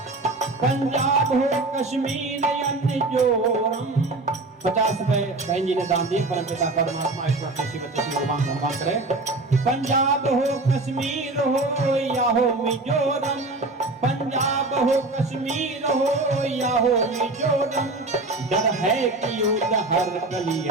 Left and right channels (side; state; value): left; quieter; 3.1 dB